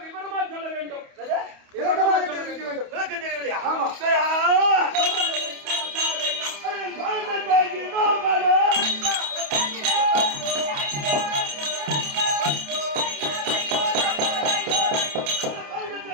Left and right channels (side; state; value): left; late; 28 ms